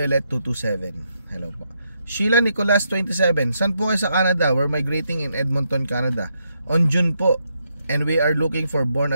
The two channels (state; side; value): inverted; both; correlation -0.79